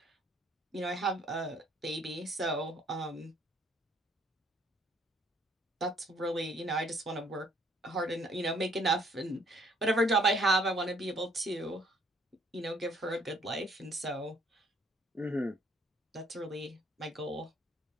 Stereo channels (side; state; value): both; normal; correlation 0.63